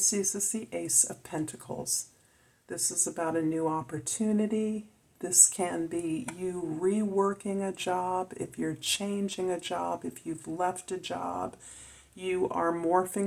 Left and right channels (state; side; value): identical; both; correlation 1.00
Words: is the Ace of Pentacles. This is about a new opportunity. This can be you reworking a job, if you're changing a job, if you've left a job, you are